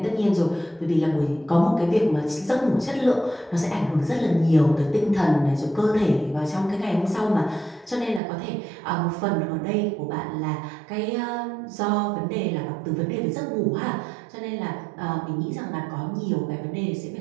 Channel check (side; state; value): left; drops out; at 8.2 s